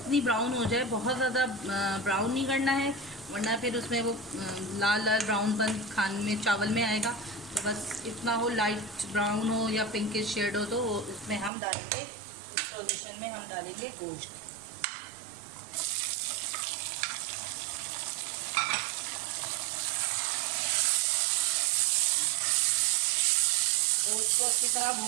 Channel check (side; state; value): left; drops out; at 11.5 s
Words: ब्राउन हो जाए, बहुत ज़्यादा ब्राउन नहीं करना है, वरना फिर उसमें वो लाल ब्राउनपन खाने में चावल में आएगा। तो बस इतना हो, लाइट ब्राउन हो या पिंकिश शेड हो, तो इसमें हम डालेंगे, इस सॉल्यूशन में हम डालेंगे गोश्त। गोश्त को अच्छी तरह